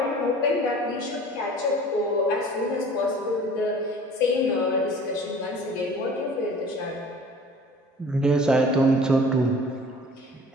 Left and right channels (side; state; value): both; normal; correlation 0.46